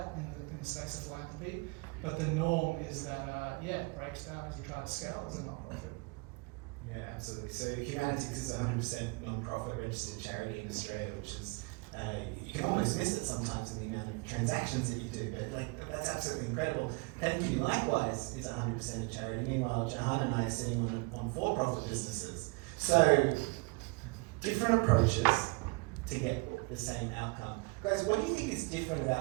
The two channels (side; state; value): left; quieter; 28.9 dB